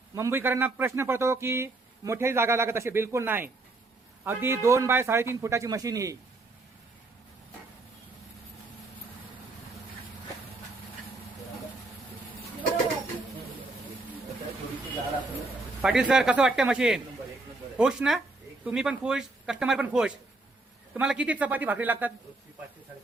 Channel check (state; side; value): quieter; left; 3.2 dB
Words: मुंबईकरांना प्रश्न पडतो की मोठ्याही जागा लागत, असे बिलकुल नाही. अगदी 2 बाय 3.5 फुटाची मशीन ही. पाटील सर, कसं वाटतं मशीन? खुश ना? तुम्ही पण खुश, कस्टमर पण खुश. तुम्हाला किती चपाती भाकरी लागतात?